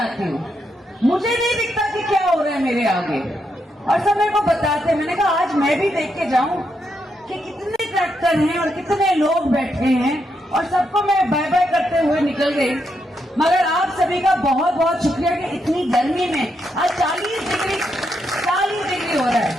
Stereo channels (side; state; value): both; normal; correlation 0.80